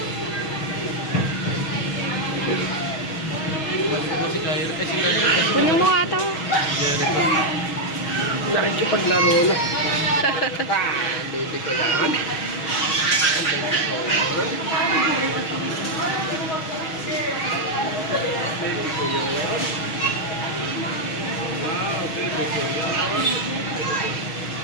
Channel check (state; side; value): late; right; 6.3 ms